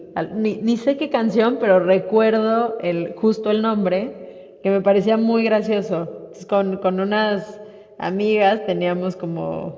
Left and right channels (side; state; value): both; identical; correlation 1.00